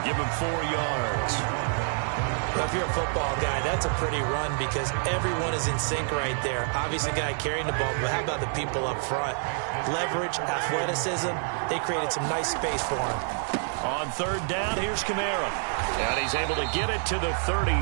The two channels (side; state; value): left; silent; 55 dB below the other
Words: Give him 4 yards. Well, if you're a football guy, that's a pretty run because everyone is in sync right there. Obviously, the guy carrying the ball, but how about the people up front? Leverage, athleticism, they created some nice space for him. On 3rd down, here's Kamara. And he's able to get it to the 33.